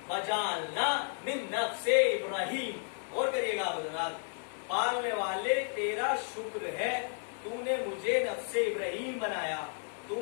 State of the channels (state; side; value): silent; right; 56 dB below the other